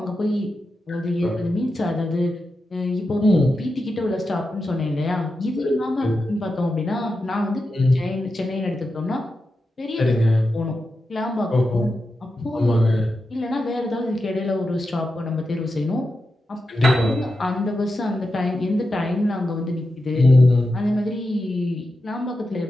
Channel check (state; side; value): normal; both; correlation 0.89